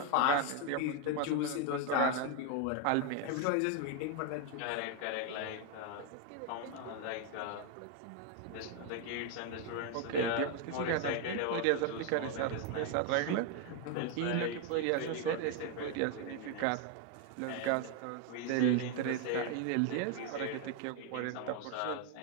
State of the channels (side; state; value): both; different; correlation 0.01